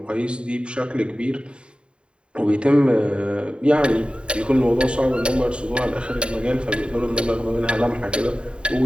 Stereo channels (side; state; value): left; late; 0.053 ms